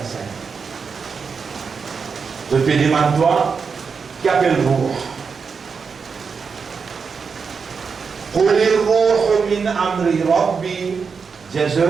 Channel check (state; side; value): quieter; left; 5.5 dB